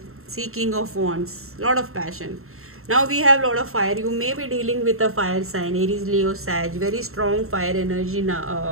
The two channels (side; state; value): left; late; 0.62 ms